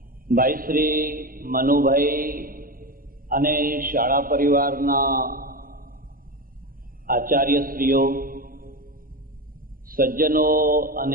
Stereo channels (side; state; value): left; late; 0.41 ms